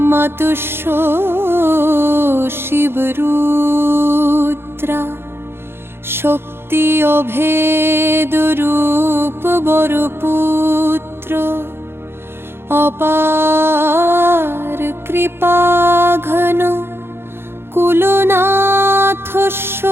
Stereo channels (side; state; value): left; late; 0.11 ms